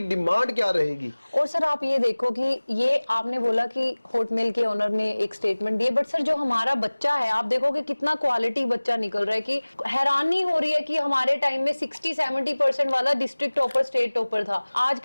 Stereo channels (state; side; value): inverted; both; correlation -1.00